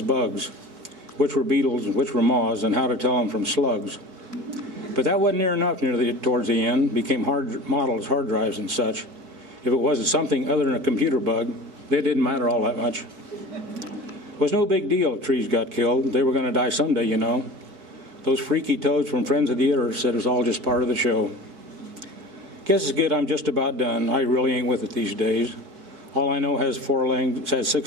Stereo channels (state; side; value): late; left; 4.6 ms